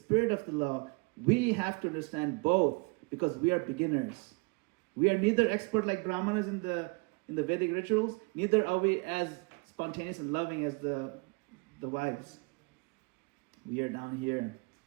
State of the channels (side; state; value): left; quieter; 30.1 dB